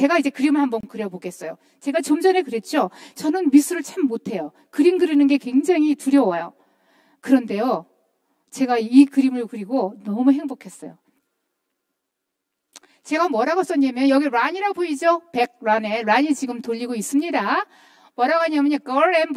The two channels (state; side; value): identical; both; correlation 1.00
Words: 이제 그림을 한번 그려보겠어요. 제가 좀 전에 그랬죠. 저는 미술을 참 못해요. 그림 그리는 게 굉장히 두려워요. 그런데요, 제가 이 그림을 그리고 너무 행복했어요. 제가 뭐라고 썼냐면 여기 란이라고 보이죠? 백란에 란이 지금 돌리고 있습니다. 뭐라고 하냐면요, Girl and